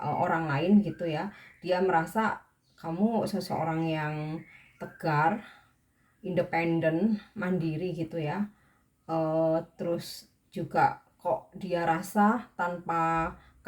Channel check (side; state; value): both; identical; correlation 1.00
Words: lain gitu ya. Dia merasa kamu seseorang yang tegar, independen, mandiri gitu ya. Terus juga kok dia rasa tanpa